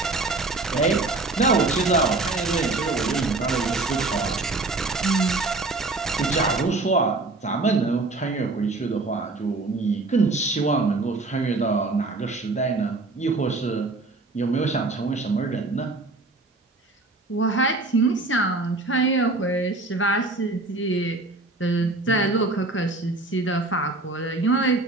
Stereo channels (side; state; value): left; quieter; 3.3 dB